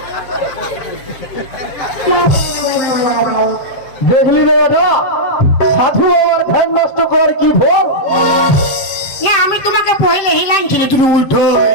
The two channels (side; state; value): right; late; 7.6 ms